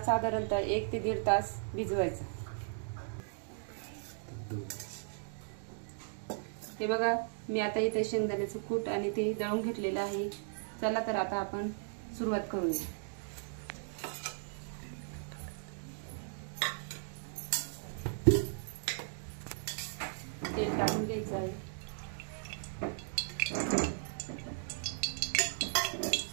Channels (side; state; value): left; silent; digital silence